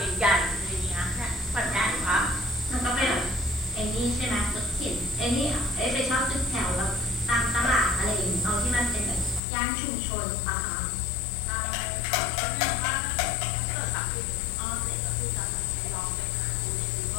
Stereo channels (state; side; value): drops out; right; at 9.4 s